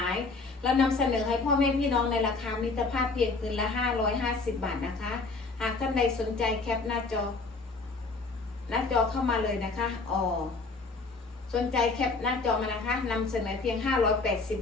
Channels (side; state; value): right; quieter; 3.9 dB